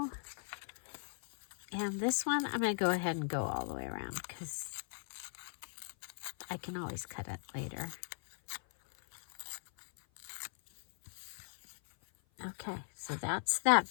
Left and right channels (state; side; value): silent; right; 52 dB below the other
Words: And this one, I'm going to go ahead and go all the way around because I can always cut it later. Okay, so that's that